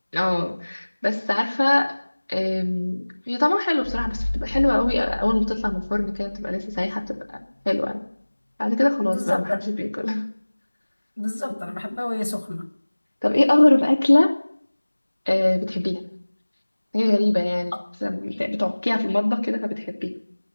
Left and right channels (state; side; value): inverted; both; correlation -1.00